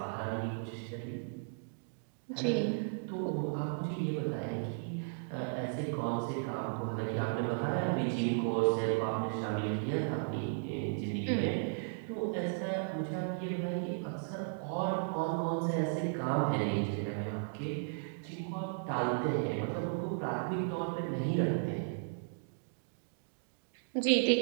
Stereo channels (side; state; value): left; silent; digital silence